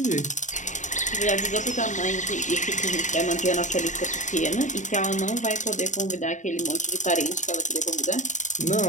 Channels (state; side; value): late; right; 0.36 ms